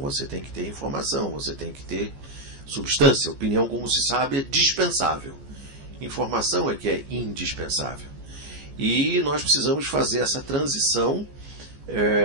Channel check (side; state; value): left; late; 14 ms